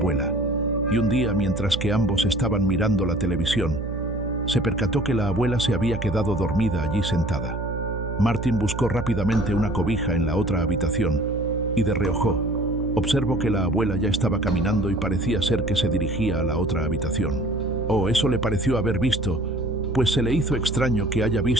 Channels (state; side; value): noise; right; hum, 6 dB below the sound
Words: y un día, mientras que ambos estaban mirando la televisión, se percató que la abuela se había quedado dormida allí sentada. Martín buscó rápidamente una cobija en la otra habitación y de reojo observó que la abuela ya estaba caminando y parecía ser que se dirigía a la otra habitación. Eso le pareció haber visto, pues se le hizo extraño que haya